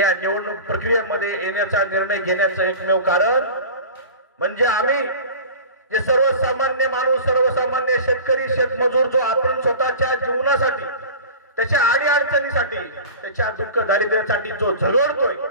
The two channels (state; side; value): inverted; both; correlation -0.36